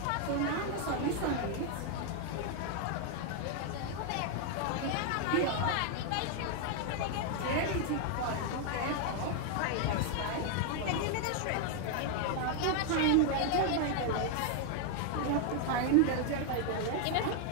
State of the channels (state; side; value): different; both; correlation 0.00